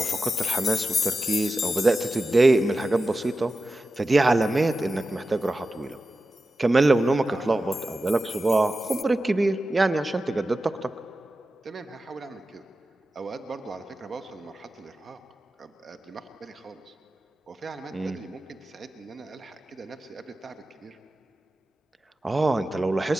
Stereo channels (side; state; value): both; normal; correlation 0.93